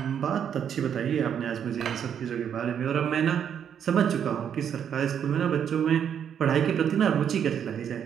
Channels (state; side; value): quieter; left; 8.5 dB